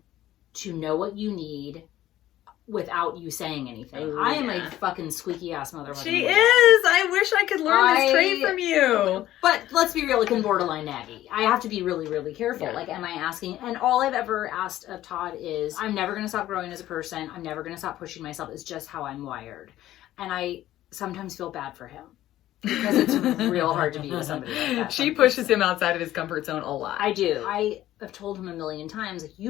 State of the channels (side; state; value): right; quieter; 13.9 dB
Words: to know what you need without you saying anything? Ooh, I am a fucking squeaky ass motherfucker. She is! I wish I could learn this trait from you. But let's be real, like, in borderline naggy. I have to be really, really careful. Yeah. Like, am I asking? And all I've ever asked of Todd is, I'm never going to stop growing as a person. I'm never going to stop pushing myself. It's just how I'm wired. And I sometimes feel bad for him. because it's real hard to be with somebody like that. She pushes him outside of his comfort zone a lot. I do. I have told him a million times, like, you